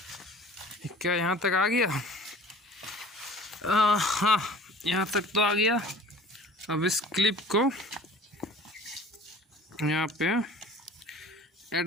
क्या यहाँ तक आ गया? हाँ यहाँ तक तो आ गया। अब इस क्लिप को यहाँ पे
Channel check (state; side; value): normal; both; correlation 0.46